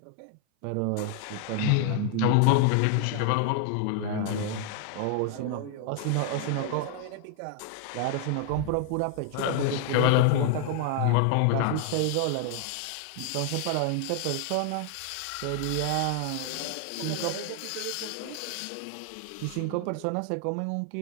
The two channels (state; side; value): different; both; correlation 0.00